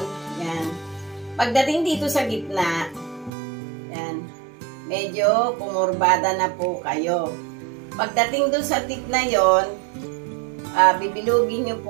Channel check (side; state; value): left; drops out; at 3.3 s